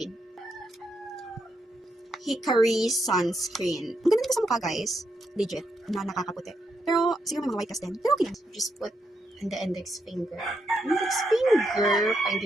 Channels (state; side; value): normal; both; correlation 0.80